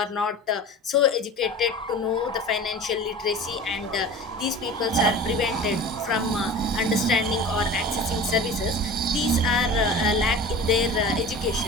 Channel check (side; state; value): both; normal; correlation 0.37